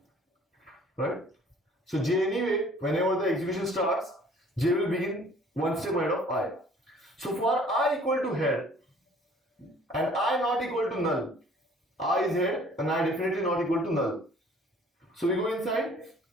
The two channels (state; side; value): normal; both; correlation 0.54